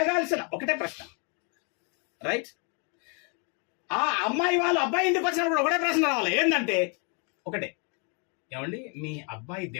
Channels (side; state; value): right; quieter; 36.6 dB